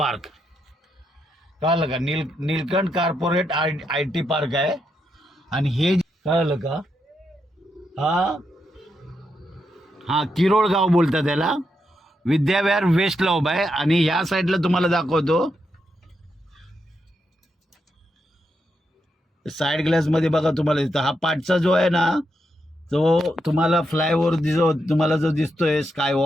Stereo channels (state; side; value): normal; both; correlation 0.82